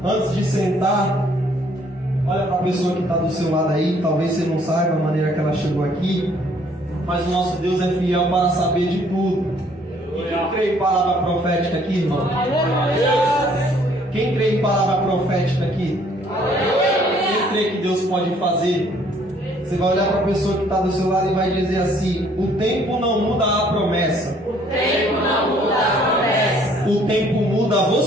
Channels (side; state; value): both; normal; correlation 0.61